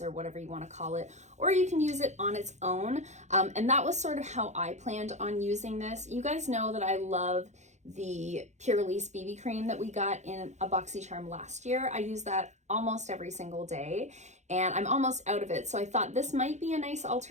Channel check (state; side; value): late; left; 0.33 ms